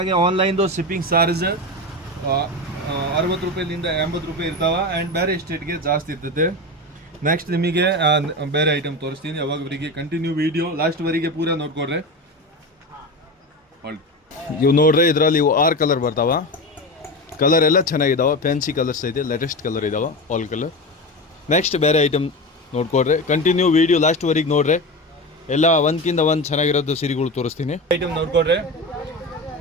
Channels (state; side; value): normal; both; correlation 0.23